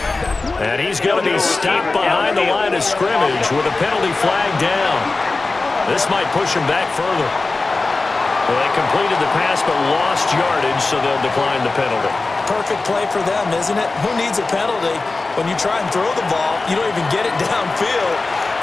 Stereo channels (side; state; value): right; quieter; 3.6 dB